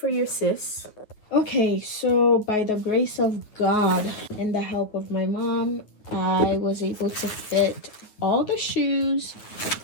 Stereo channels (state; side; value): late; right; 9.5 ms